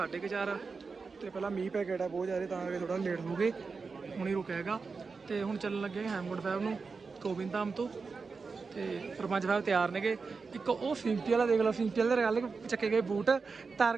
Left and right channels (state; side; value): quieter; left; 4.7 dB